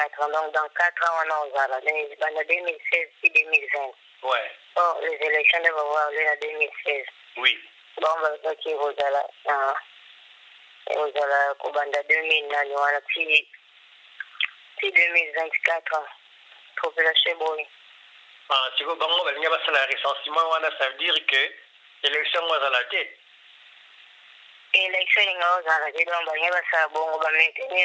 ans donc dans 4 ans wana ozala banda 2016 puis 2020 ouais. Oh, les élections devaient avoir lieu en 2016. Oui. Bon, bah, qui vous allez, Kobanda 2009, puis 2024, population boy. Ah, si vous avez un recensement, ça veut dire que l'élection va à la tête. L'élection va à la tête, donc, il va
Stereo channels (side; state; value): both; identical; correlation 1.00